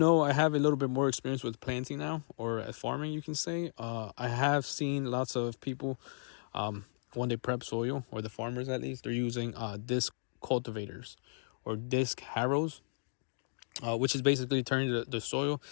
I have a little bit more experience with planting now, or at farming, you can say. I have seen lots of people, when they prep soil, or the farmers at least, they're using disc cultivators or disc harrows, which is basically turning the soil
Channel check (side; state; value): right; silent; digital silence